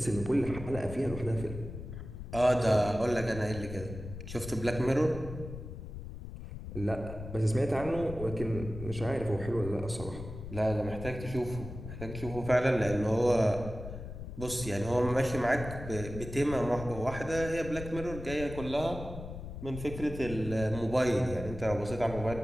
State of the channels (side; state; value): left; noise; rumble, 10 dB below the sound